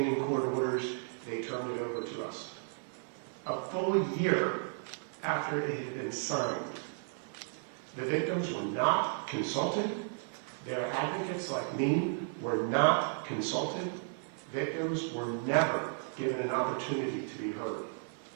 court orders, they turned it over to us. A full year after it had been signed. The victims were not consulted. Their advocates, like me, were not consulted. Victims were never given an opportunity to be heard.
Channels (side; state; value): left; silent; 55 dB below the other